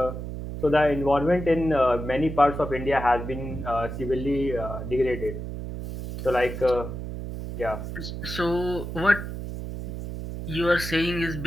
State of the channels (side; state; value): right; noise; hum, 7 dB below the sound